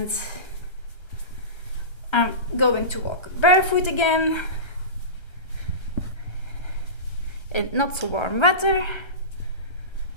I'm going to walk barefoot again in not so warm weather.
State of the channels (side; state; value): right; late; 1.3 ms